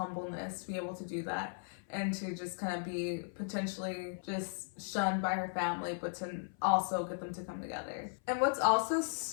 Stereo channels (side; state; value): right; silent; 53 dB below the other